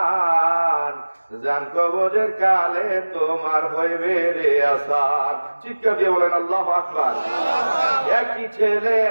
জান কবরের কালে তোমার হইবে রে আসার। চিৎকার দিয়ে বলেন আল্লাহু আকবার।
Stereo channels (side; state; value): both; inverted; correlation -1.00